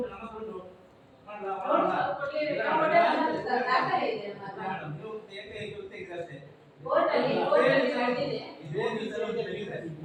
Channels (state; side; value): identical; both; correlation 1.00